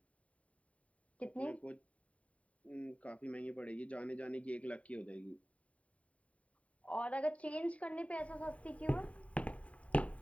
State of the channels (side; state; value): right; late; 0.066 ms